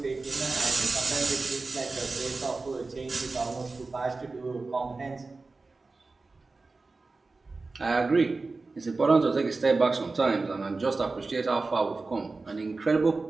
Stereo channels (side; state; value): left; quieter; 3.7 dB